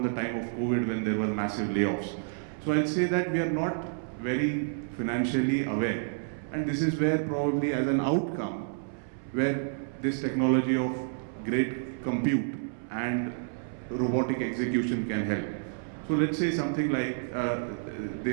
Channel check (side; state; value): left; silent; 58 dB below the other